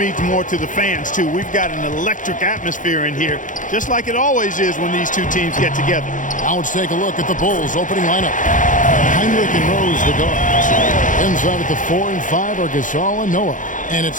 more to the fans, too. We've got an electric atmosphere in here, just like it always is when these two teams get together. Now let's take a look at the Bulls' opening lineup. Heinrich and Rose, the guards. Inside at the 4 and 5 are Gasol and Noah. And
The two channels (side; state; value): right; late; 0.38 ms